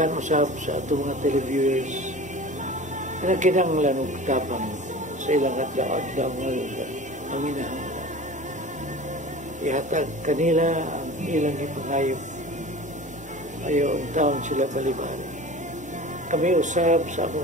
usap sa atong mga televiewers, na kinanglan og tapang sa ilang adlaw ngayon ang inahanglan. Ihatag kanila ang ilang ipangayo. Ayaw ang taon sila balibali. Kami usab sa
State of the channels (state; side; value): normal; both; correlation 0.38